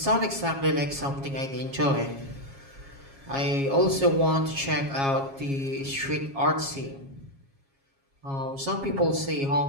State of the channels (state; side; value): late; left; 7.3 ms